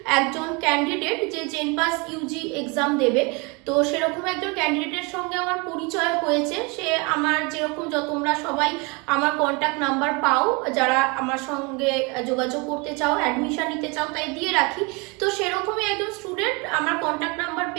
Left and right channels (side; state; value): left; quieter; 29.4 dB